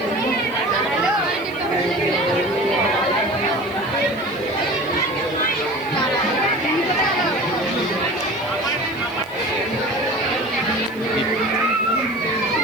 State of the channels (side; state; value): left; noise; hiss, 24 dB below the sound